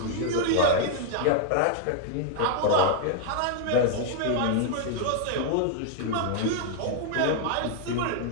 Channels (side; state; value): both; different; correlation -0.01